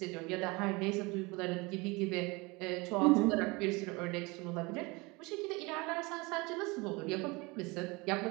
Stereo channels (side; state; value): left; quieter; 25.4 dB